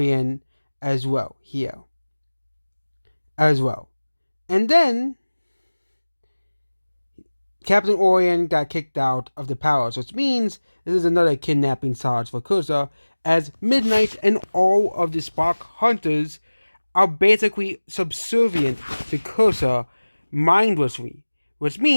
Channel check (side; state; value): both; inverted; correlation -1.00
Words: as well here. As well. And then Captain Orient got kicked out of the palace, which means this is another kidnapping charge for Cursa, as Midnight and all of the Spark Hunters are basically subservient to Cursa mindlessly, which